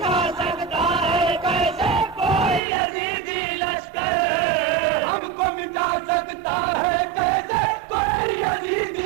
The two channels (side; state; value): left; drops out; at 2.6 s